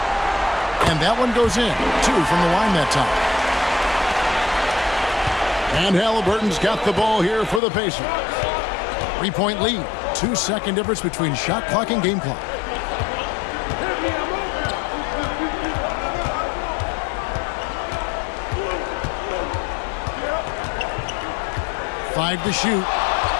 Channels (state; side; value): drops out; right; at 7.6 s